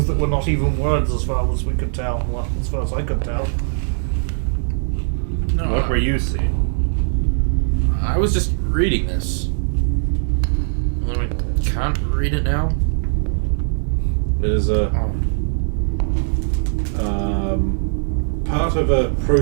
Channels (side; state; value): left; silent; digital silence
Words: that were not even words as far as we could tell. Well, as far as I could tell. No. What were you seeing? I was just reading this. Although I can't read it now. It is a part of a